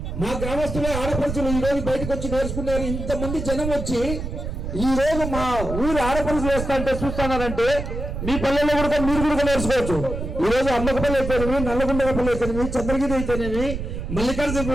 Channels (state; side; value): noise; right; rumble, 5 dB below the sound